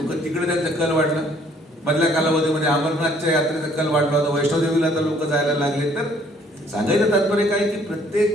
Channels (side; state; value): both; normal; correlation 0.61